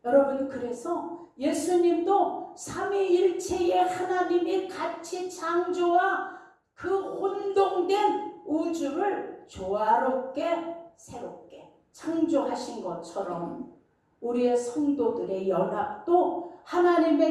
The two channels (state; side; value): identical; both; correlation 1.00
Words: 여러분, 그래서 예수님도 삼위일체의 하나님이 같이 창조와 그 혼동된 우주를 조화롭게 새롭게 창조하신 것처럼 우리의 성도들의 연합도